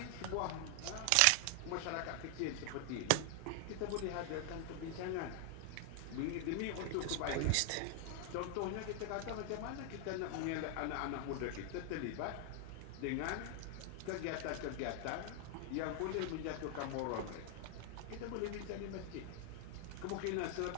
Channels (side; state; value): both; different; correlation 0.00